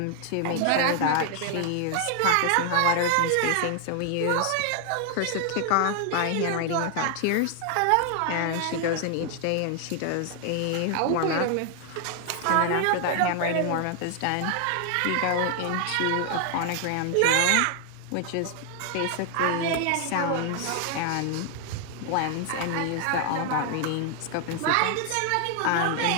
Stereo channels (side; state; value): both; different; correlation 0.00